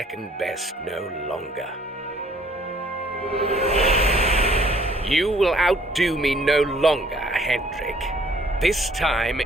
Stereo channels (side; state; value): both; normal; correlation 0.59